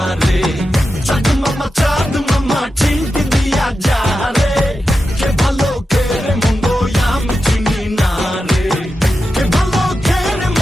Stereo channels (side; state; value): both; normal; correlation 0.90